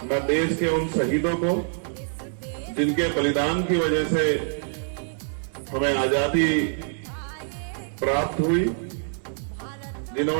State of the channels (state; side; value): silent; left; digital silence